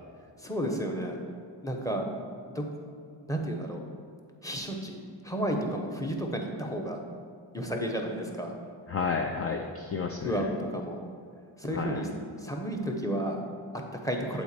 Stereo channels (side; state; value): both; normal; correlation 0.32